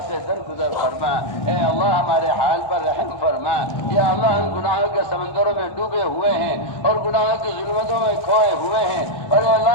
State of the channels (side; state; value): right; late; 1.2 ms